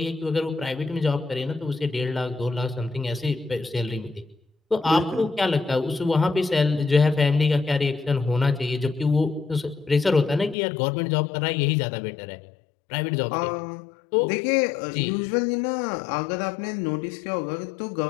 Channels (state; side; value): drops out; right; at 10.6 s